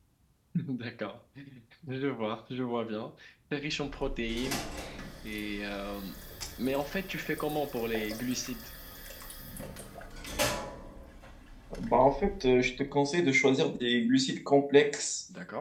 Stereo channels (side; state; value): both; identical; correlation 1.00